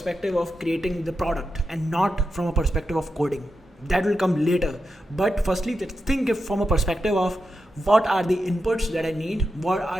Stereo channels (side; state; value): both; normal; correlation 0.88